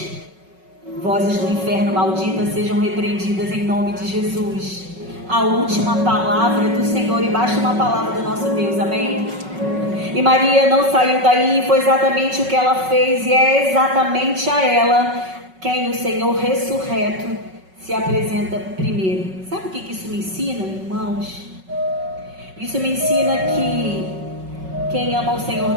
Vozes do inferno malditas sejam repreendidas em nome de Jesus. A última palavra do Senhor, e basta uma palavra do nosso Deus, amém? E Maria não saiu daí, foi exatamente o que ela fez, e é exatamente a ela quem o Senhor ressurreto se apresenta primeiro. Sabe o que isso me ensina, irmãos? Isso me ensina que quem ama o Senhor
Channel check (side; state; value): left; late; 5.4 ms